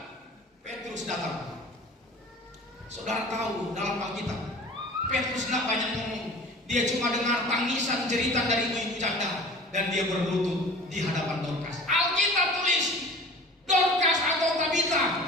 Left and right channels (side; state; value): both; normal; correlation 0.42